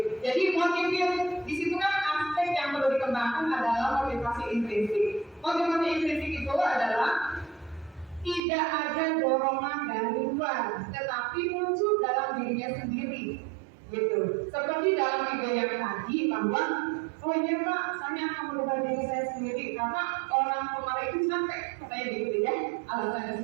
Jadi motivasi di situ kan aspek yang perlu dikembangkan adalah motivasi intrinsik. Motivasi intrinsik itu adalah tidak ada dorongan dari luar, tetapi muncul dalam dirinya sendiri, gitu. Seperti dalam video yang tadi bahwa, oh iya Pak, saya akan merubah diri saya sendiri karena orang kemarin itu sampai katanya gitu ya,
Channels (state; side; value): drops out; left; at 8.4 s